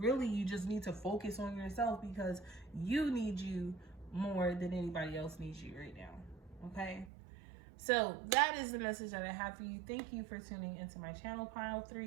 really you just need to focus on yourself because you need you more than anybody else needs you right now. Okay, so that is the message that I have for you. Thank you for tuning into my channel, Pile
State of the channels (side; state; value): left; drops out; at 7.1 s